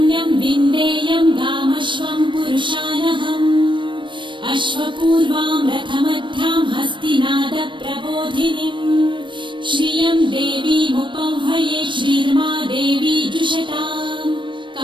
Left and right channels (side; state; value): left; late; 0.24 ms